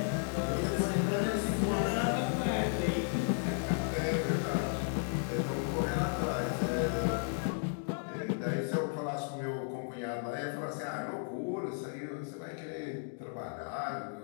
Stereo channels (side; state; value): right; silent; digital silence